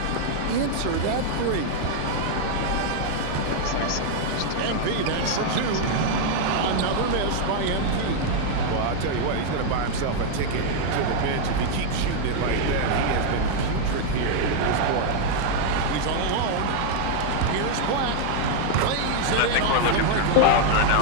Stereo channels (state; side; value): different; both; correlation 0.00